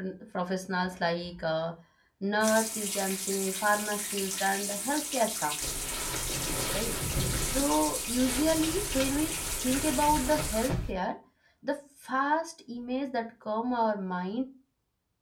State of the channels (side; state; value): both; identical; correlation 1.00